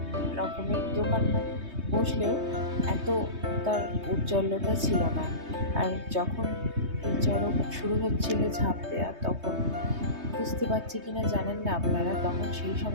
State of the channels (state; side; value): late; left; 3.2 ms